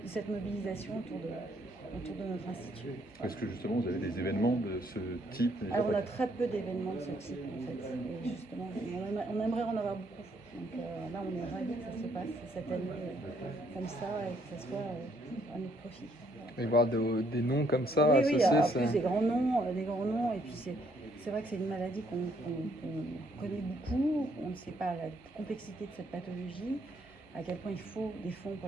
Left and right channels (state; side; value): normal; both; correlation 0.69